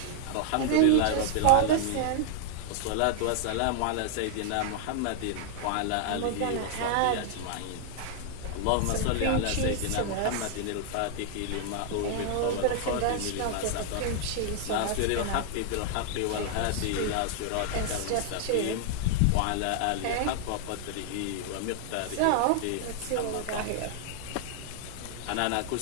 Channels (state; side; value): different; both; correlation 0.00